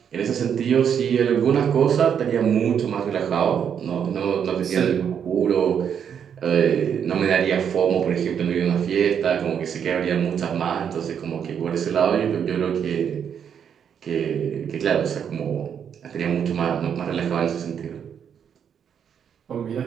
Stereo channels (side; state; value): left; quieter; 8.0 dB